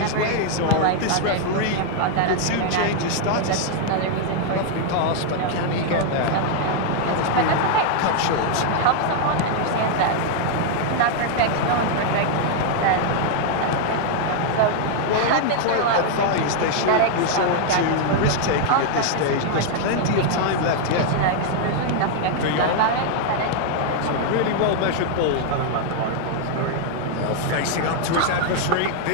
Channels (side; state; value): both; different; correlation 0.00